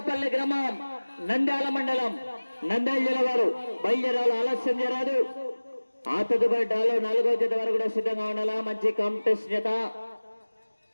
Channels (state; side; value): inverted; both; correlation -1.00